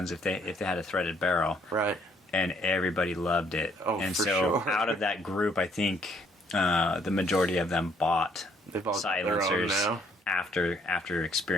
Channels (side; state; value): both; normal; correlation 0.66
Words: if they had a threaded barrel. Right. And everybody loved it. Oh, and for so sure. out of that group, I think the majority of them bought silencers after